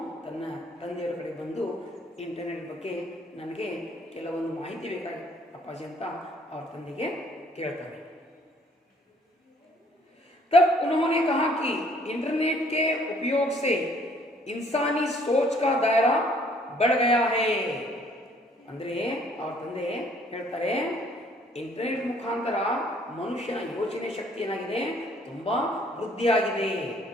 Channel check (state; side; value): normal; both; correlation 0.61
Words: ತನ್ನ ತಂದೆಯವರ ಕಡೆ ಬಂದು इंटरनेट ಬಗ್ಗೆ ನನಗೆ ಕೆಲವೊಂದು ಮಾಹಿತಿ ಬೇಕಾಗಿ ಅಪ್ಪಾಜಿ ಅಂತ ಅವ್ರ ತಂದೆಗೆ ಕೇಳ್ತಾರೆ. तब उन्होंने कहा कि इंटरनेट के उपयोग से इंसानी सोच का दायरा बढ़ गया है. ಅಂದರೆ ಅವ್ರ ತಂದೆ ಹೇಳ್ತಾರೆ, ಇಂಟರ್ನೆಟ್ ಮುಖಾಂತರ ಮನುಷ್ಯನ ಯೋಚನೆ ಶಕ್ತಿ ಏನಾಗಿದೆ, ತುಂಬಾ ವೃದ್ಧಿಯಾಗಿದೆ.